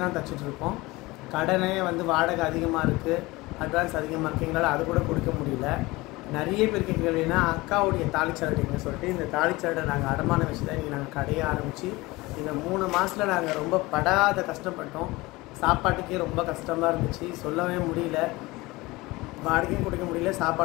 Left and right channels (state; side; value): quieter; right; 21.4 dB